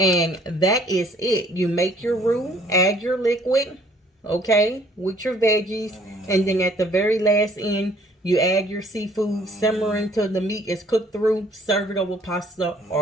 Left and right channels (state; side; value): normal; both; correlation 0.59